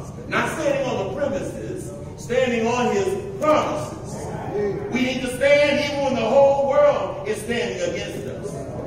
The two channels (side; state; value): both; identical; correlation 1.00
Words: Not standing on the premises, standing on his promises. We need to stand even when the whole world is standing against